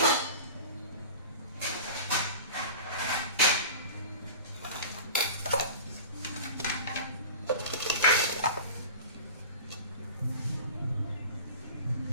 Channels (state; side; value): inverted; both; correlation -0.36